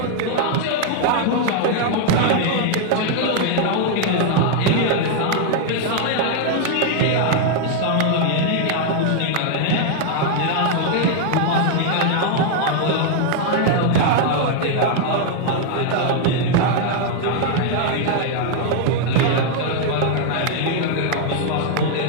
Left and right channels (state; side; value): different; both; correlation 0.00